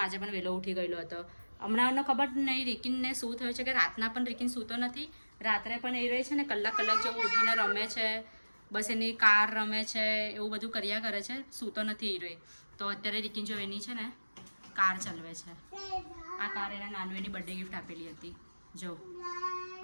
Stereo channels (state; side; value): inverted; both; correlation -1.00